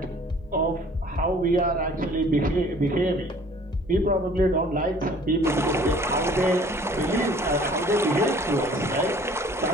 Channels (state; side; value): normal; both; correlation 0.52